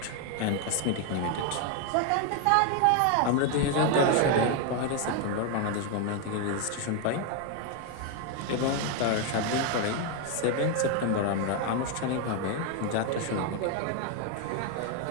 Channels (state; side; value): different; both; correlation 0.01